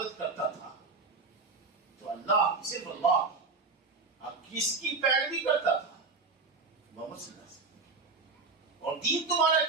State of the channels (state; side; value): quieter; left; 4.2 dB